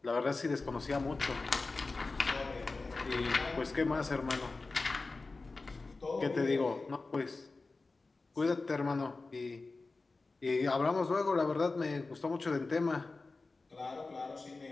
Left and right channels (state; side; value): quieter; right; 3.7 dB